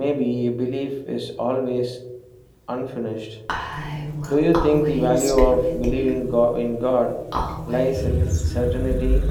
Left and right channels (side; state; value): both; identical; correlation 1.00